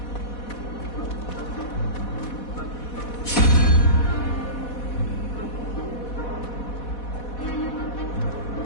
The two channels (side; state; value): right; late; 4.1 ms